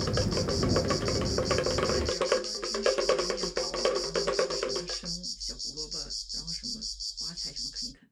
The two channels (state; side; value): identical; both; correlation 1.00